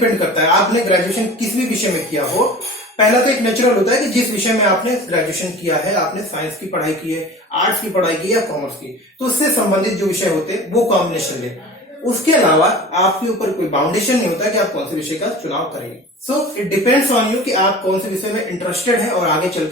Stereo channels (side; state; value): both; normal; correlation 0.39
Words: करता है आपने ग्रेजुएशन किस भी विषय में किया हो। पहला तो एक नेचुरल होता है कि जिस विषय में आपने ग्रेजुएशन किया है, आपने साइंस की पढ़ाई की है, आर्ट्स की पढ़ाई की है या कॉमर्स की, तो उससे संबंधित जो विषय होते हैं वो कॉम्बिनेशन ले। उसके अलावा आपके ऊपर कोई बाउंडेशन नहीं होता कि आप कौन से विषय का चुनाव करेंगे। So it depends on you कि आप कौन से विषय में इंटरेस्टेड हैं और आगे चल